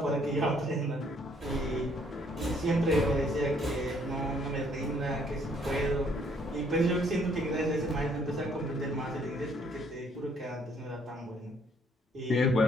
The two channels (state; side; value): normal; both; correlation 0.65